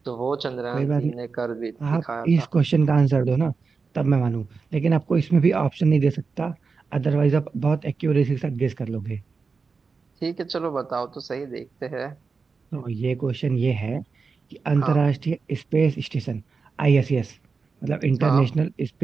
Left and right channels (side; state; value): left; quieter; 4.8 dB